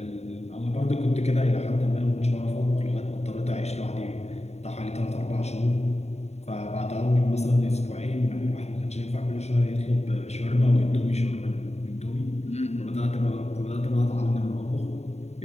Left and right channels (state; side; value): late; right; 0.32 ms